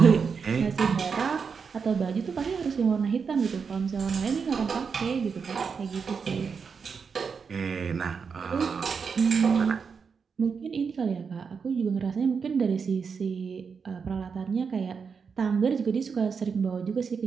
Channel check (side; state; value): left; quieter; 5.8 dB